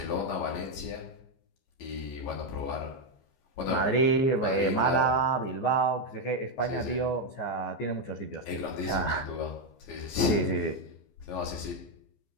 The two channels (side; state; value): right; late; 15 ms